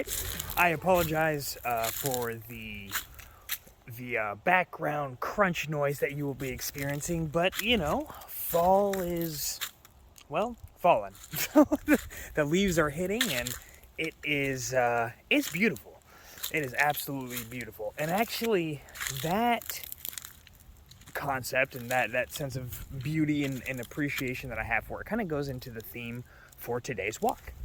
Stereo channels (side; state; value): both; identical; correlation 1.00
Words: I apologize for the background crunch noise that you will be experiencing, but you know, fall is, well, fallen. The leaves are hitting, and it is it's beautiful. It is absolutely beautiful, and actually, that concept and that sense of beauty and appreciation that I have for it kind of goes into the theme for today's walk.